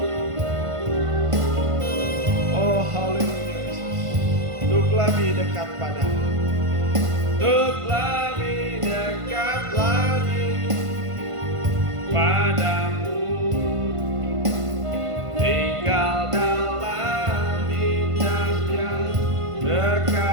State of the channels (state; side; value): late; left; 1.5 ms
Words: oh haleluya Yesus, untuk lebih dekat padamu, untuk lebih dekat lagi padamu, tinggal dalam indahnya